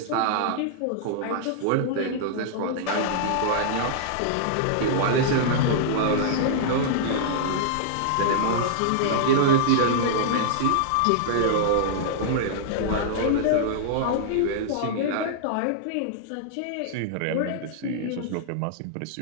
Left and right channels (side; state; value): both; different; correlation -0.01